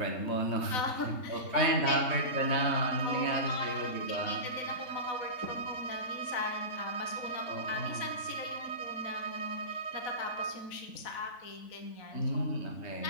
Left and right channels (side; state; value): right; late; 4.0 ms